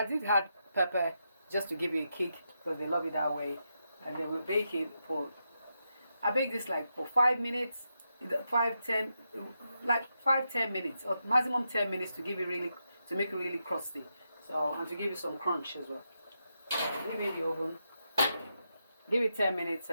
did add pepper just to give it a kick because they love it that way. And then we bake it I bake this like for 5 minutes, 5-10 minutes, or maximum 10 minutes to make it really crusty. So, and to give it some crunch as well. So leave it in the oven. Give it 10 minutes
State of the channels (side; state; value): both; inverted; correlation -0.85